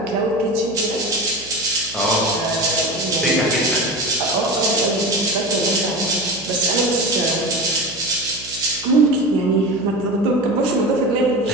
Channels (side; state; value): right; noise; hum, 20 dB below the sound